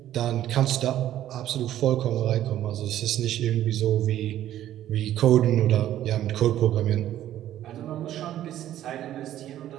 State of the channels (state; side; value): quieter; left; 12.4 dB